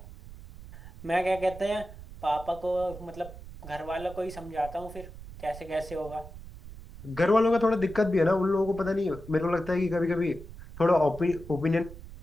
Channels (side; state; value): right; noise; rumble, 15 dB below the sound